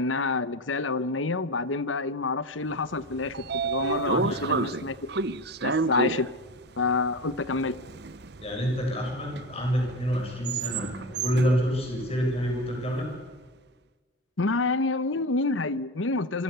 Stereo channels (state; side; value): normal; both; correlation 0.24